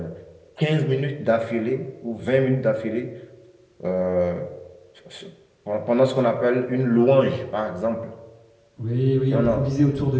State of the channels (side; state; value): both; identical; correlation 1.00